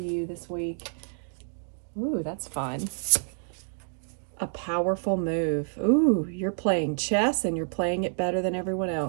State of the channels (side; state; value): left; silent; digital silence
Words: you this week. Ooh, that's fun. A powerful move. Ooh, you're playing chess and you're playing it better than everyone